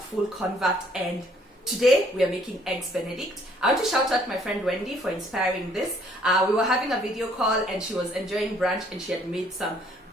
convert, and today we are making eggs Benedict. I want to shout out my friend Wendy for inspiring this. We were having a video call and she was enjoying brunch and she had made some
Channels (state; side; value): normal; both; correlation 0.63